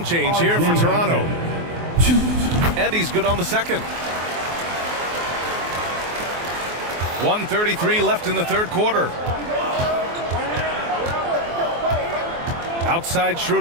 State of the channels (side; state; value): left; late; 24 ms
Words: change here for Toronto. And he's good on the second. 1:33 left in the third quarter. Outside